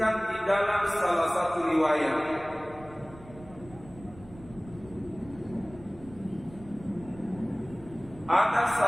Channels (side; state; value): right; noise; rumble, 19 dB below the sound